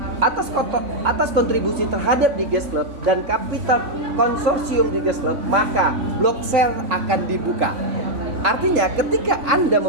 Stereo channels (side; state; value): left; late; 3.5 ms